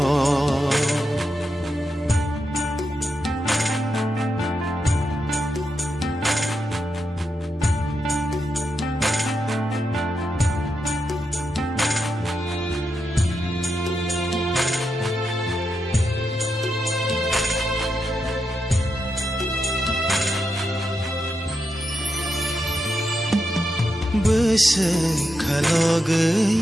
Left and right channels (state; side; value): normal; both; correlation 0.86